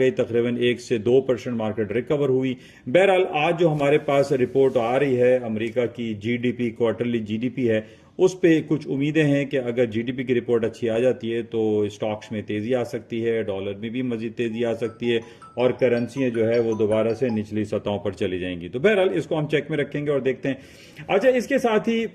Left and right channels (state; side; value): identical; both; correlation 1.00